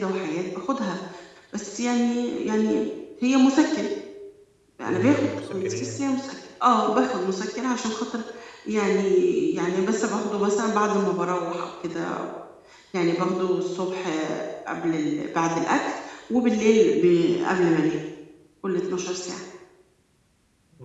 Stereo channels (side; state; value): both; identical; correlation 1.00